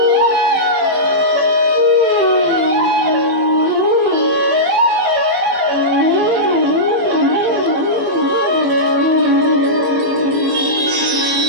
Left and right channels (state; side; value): late; left; 15 ms